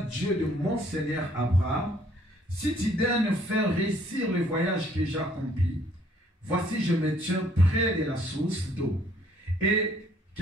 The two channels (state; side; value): normal; both; correlation 0.62